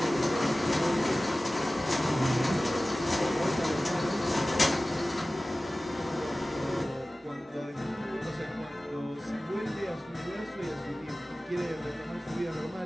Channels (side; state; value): both; normal; correlation 0.97